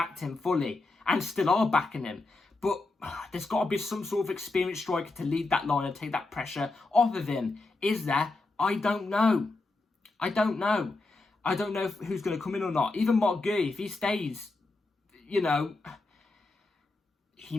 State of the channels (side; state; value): right; quieter; 3.3 dB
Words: him fully and still are backing him. But there's got to be some sort of experienced striker to lead that line and take that pressure off of him. Is there? I don't know. I don't know who's going to come in or not. Even Marc Goalie, if he stays, he